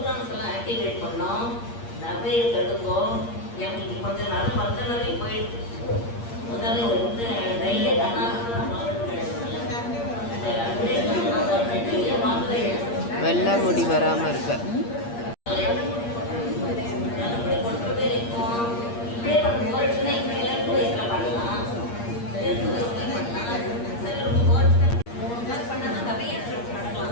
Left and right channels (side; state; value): right; late; 8.6 ms